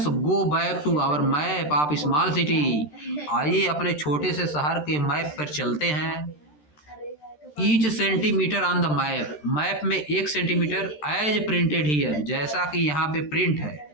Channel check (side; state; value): right; late; 13 ms